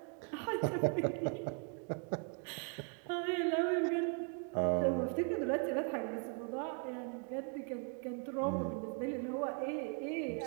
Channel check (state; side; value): quieter; left; 38.7 dB